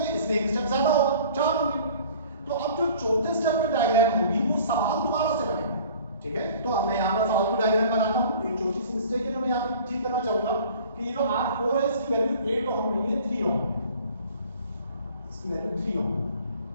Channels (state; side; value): inverted; both; correlation -0.49